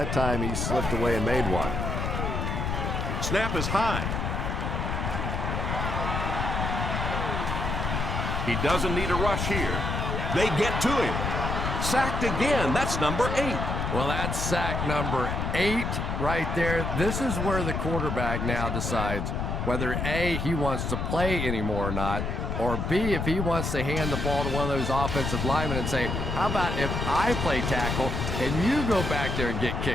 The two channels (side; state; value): left; noise; rumble, 2 dB below the sound